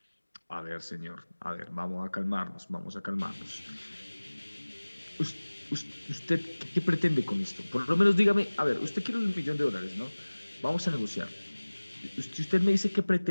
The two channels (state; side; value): inverted; both; correlation -1.00